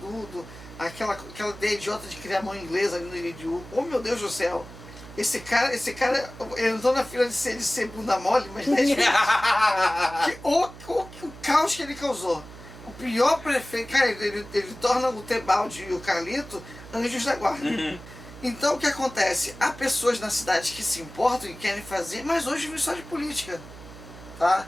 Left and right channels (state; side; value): noise; right; hum, 16 dB below the sound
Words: aquela ideia idiota de criar mão inglesa ali no Iridiú. Oh, meu Deus do céu! Esse cara, ele entrou na fila de ser bunda mole, mas não é o caos que ele causou. O pior prefeito, cara, ele torna o Tebaldi e o Carlito anjos da guarda. Então o que acontece? Há pessoas na cidade que se importam e querem fazer, mas hoje vive só de política. Tá?